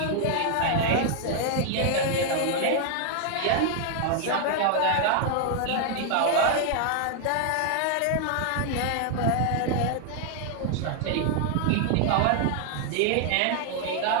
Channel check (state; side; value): different; both; correlation 0.00